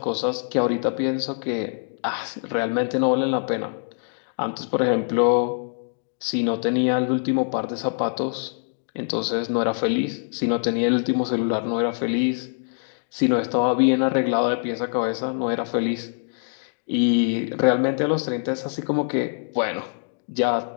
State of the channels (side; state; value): right; silent; digital silence